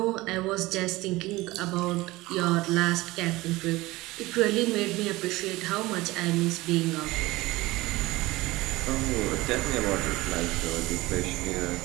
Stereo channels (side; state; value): left; quieter; 19.8 dB